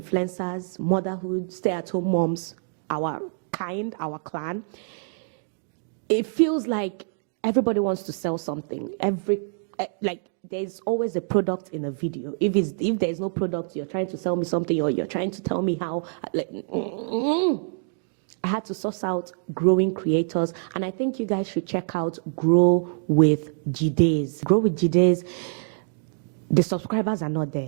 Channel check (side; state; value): left; silent; digital silence